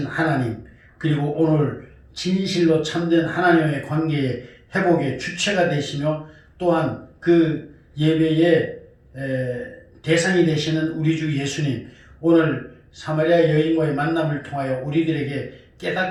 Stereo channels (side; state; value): both; identical; correlation 1.00